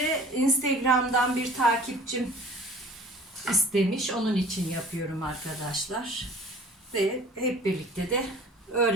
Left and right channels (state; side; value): normal; both; correlation 0.46